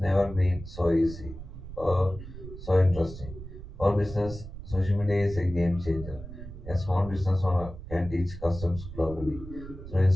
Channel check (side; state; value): right; noise; rumble, 12 dB below the sound